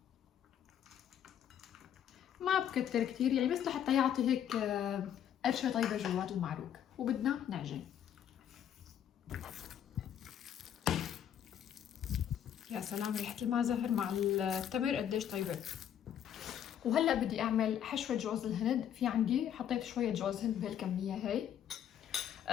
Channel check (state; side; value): quieter; right; 9.7 dB